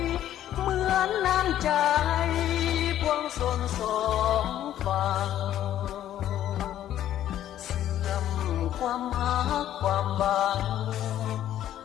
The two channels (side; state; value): right; quieter; 11.9 dB